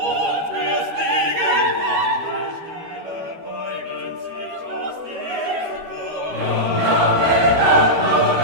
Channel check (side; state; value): left; late; 12 ms